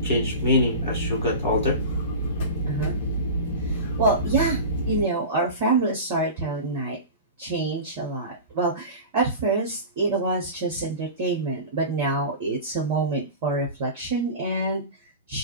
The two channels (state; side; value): inverted; both; correlation -0.30